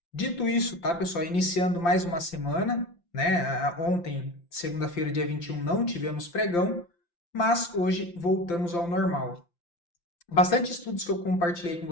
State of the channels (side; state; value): right; late; 5.8 ms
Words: Dito isso, tá, pessoal? Iniciando mais uma semana, né? Ontem, segunda-feira, dia 21, não tivemos pregão, mas hoje voltamos ao normal. Bastante estudos que eu compartilhei com